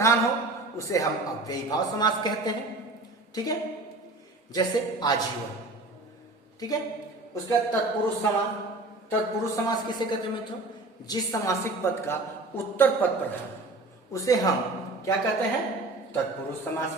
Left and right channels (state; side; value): quieter; left; 3.0 dB